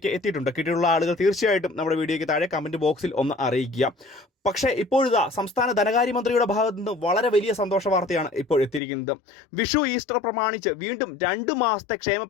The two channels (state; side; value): drops out; right; at 8.8 s